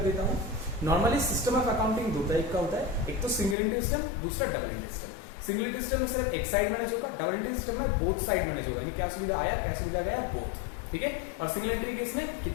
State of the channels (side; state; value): right; drops out; at 3.6 s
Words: देता हूँ। नॉर्मली सिस्टम ऑफ अकाउंटिंग दो टाइप का होता है, एक तो सिंगल एंट्री सिस्टम, दूसरा double entry system. Single entry system में सिर्फ एक साइड मैनेज होगा, डबल एंट्री सिस्टम में बोथ साइड मैनेज होगा, यानी क्या सुविधा आया क्या सुविधा गया बोथ, ठीक है। और सिंगल एंट्री केस में